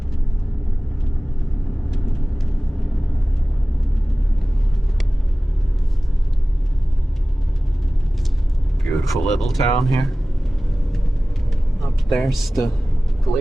Beautiful little town here. Up there's the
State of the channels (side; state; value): both; normal; correlation 0.97